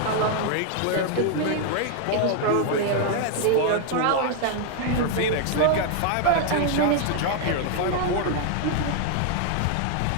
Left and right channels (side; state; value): both; different; correlation 0.00